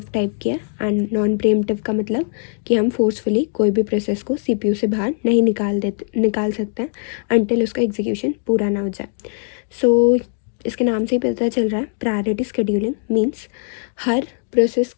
type की है and non pre-emptive का मतलब कि हम फोर्सफुली कोई भी प्रोसेस को CPU से बाहर नहीं निकाल सकते हैं अनटिल उसका एग्जीक्यूशन पूरा ना हो जाए. इसके नाम से ही पता चल रहा है प्रायोरिटी शेड्यूलिंग मीन्स हर प्रोसेस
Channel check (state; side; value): silent; right; 57 dB below the other